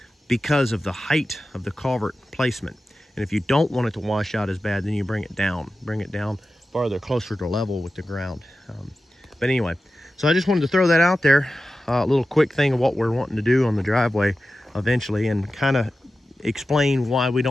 because of the height of the culvert placement. And if you don't want it to wash out as bad, then you bring it down farther, closer to level with the ground. But anyway, so I just wanted to throw that out there, a little quick thing of what we're wanting to do on the driveway eventually, and kind of explain why we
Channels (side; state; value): both; normal; correlation 0.93